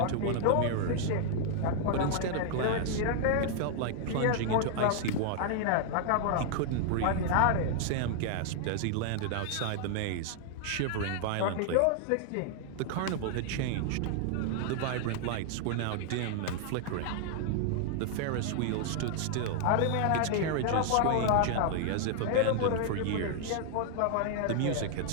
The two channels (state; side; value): different; both; correlation 0.00